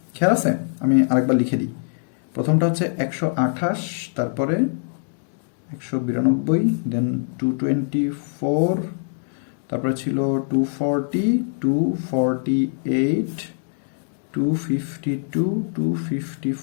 খেয়াল আছে? আমি আরেকবার লিখে দিই। প্রথমটা হচ্ছে 128, তারপরে 192, দেন 224, তারপরে ছিল 240, 248, 252,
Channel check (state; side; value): silent; right; digital silence